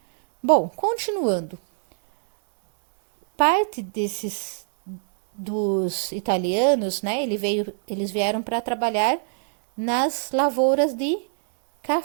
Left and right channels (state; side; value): silent; left; digital silence